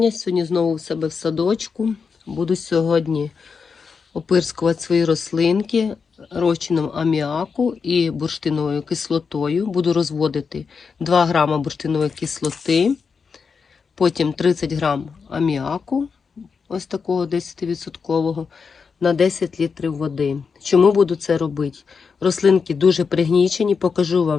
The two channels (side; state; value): right; quieter; 5.5 dB